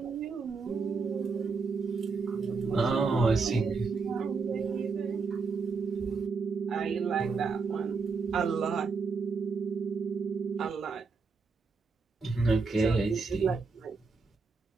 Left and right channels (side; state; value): left; quieter; 4.7 dB